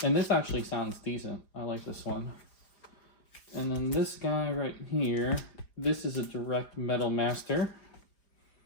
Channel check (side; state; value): right; late; 4.9 ms